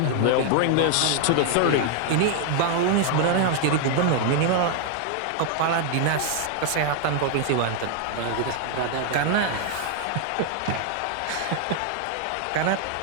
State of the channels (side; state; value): both; different; correlation 0.00